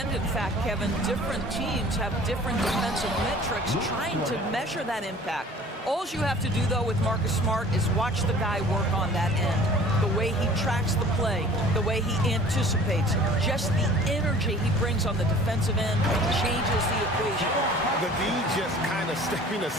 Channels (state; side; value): normal; both; correlation 0.48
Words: in fact, Kevin, different teams have different defensive metrics trying to measure that impact. All you have to do, though, with Marcus Smart is watch the guy work on that end. The way he tracks the play, the way he anticipates, just the energy he brings on the defensive end changes the equation. The D just kind of stepping